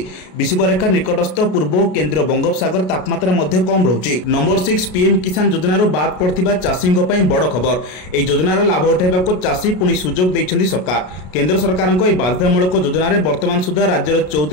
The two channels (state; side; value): late; right; 33 ms